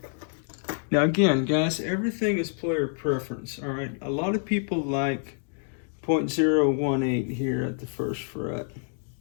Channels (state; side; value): silent; right; 58 dB below the other